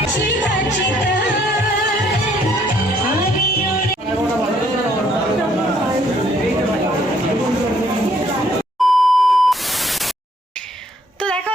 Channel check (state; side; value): normal; both; correlation 0.66